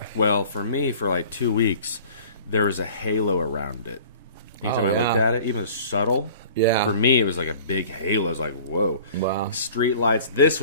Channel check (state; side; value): inverted; both; correlation -0.46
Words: Well, for me, for like 2 weeks, there was a halo around it. Anytime Oh, I looked yeah. at it, even subtle, Yeah. for me, it was like a big halo. It was like, whoa. Wow. Street lights, this